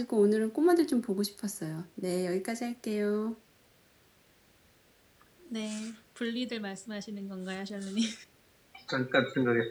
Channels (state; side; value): identical; both; correlation 1.00